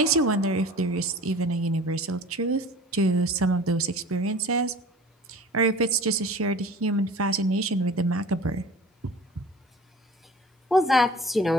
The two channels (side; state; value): both; normal; correlation 0.43